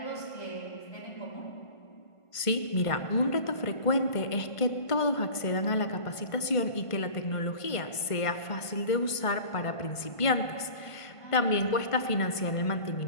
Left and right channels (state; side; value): late; right; 1.5 ms